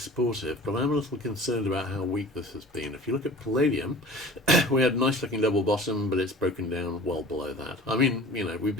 but I'm a little concerned about how weak this has been. If you look at palladium, we had a nice looking double bottom, but it's broken down well below that. I mean, we've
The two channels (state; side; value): normal; both; correlation 0.42